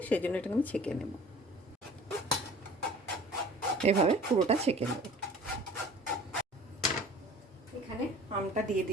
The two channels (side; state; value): both; normal; correlation 0.46